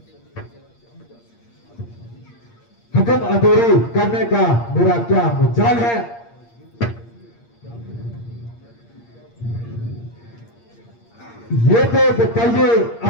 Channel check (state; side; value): late; right; 8.6 ms